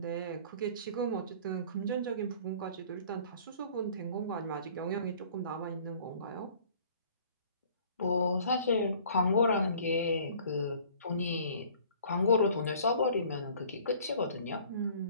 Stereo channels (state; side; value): inverted; both; correlation -0.52